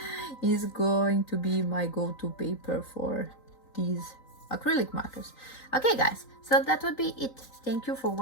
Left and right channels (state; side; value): late; right; 3.9 ms